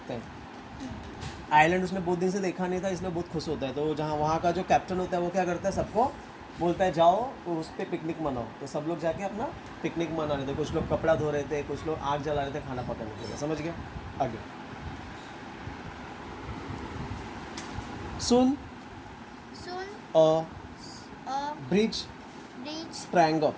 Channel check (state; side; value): identical; both; correlation 1.00